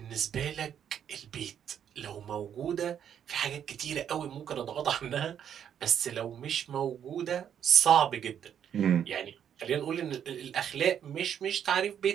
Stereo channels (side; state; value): left; quieter; 9.0 dB